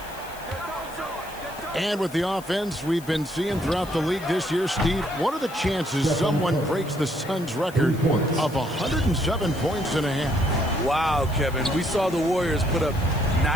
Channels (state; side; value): noise; left; hiss, 19 dB below the sound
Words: And with the offense we've been seeing throughout the league this year, Steve, what are the chances someone breaks the Suns' record of 107 points and a half? Wow, Kevin. We saw the Warriors put up